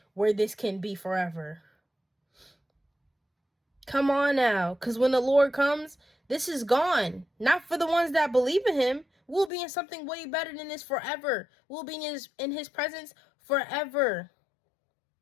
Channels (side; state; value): right; drops out; at 9.5 s